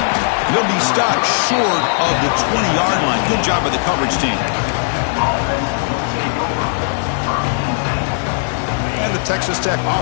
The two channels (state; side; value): silent; right; 66 dB below the other